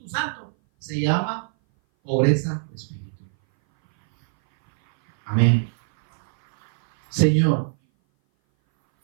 Santo se llama pobreza de espíritu. Amén. Señor,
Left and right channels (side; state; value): left; silent; 59 dB below the other